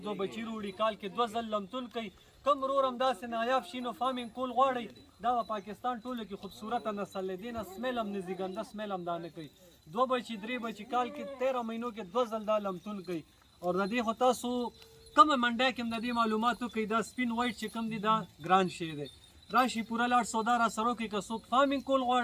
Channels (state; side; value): identical; both; correlation 1.00